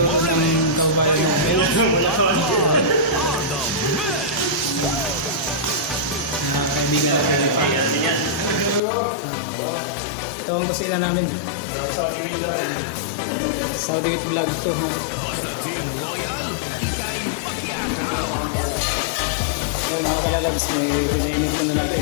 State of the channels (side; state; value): right; drops out; at 8.8 s